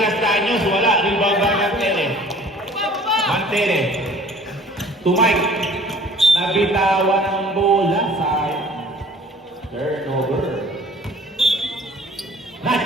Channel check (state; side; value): normal; both; correlation 0.50